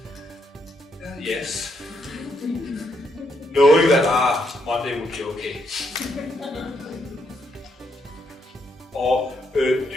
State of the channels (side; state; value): both; normal; correlation 0.76